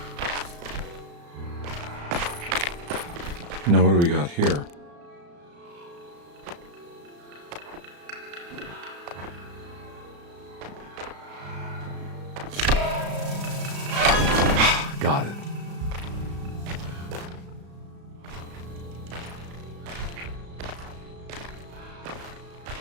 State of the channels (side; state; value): left; late; 35 ms